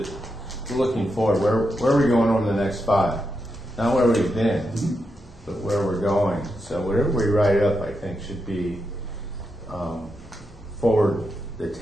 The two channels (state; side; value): normal; both; correlation 0.85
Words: we're looking forward. Where are we going over the next 5? Not where we've been, but where we're going. So whatever we write up, I think, should be forward the